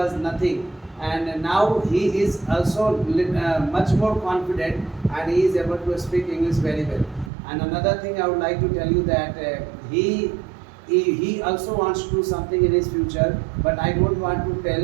nothing, and now he is also much more confident, and he is able to speak English very well. And another thing I would like to tell you that he also wants to do something in his future, but I don't want to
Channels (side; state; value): left; drops out; at 7.3 s